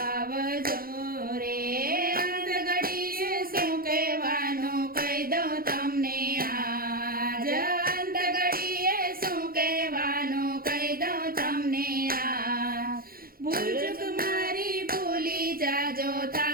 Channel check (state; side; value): late; left; 0.42 ms